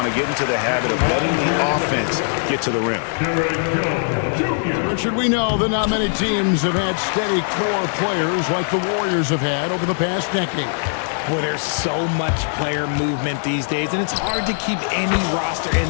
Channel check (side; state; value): right; silent; digital silence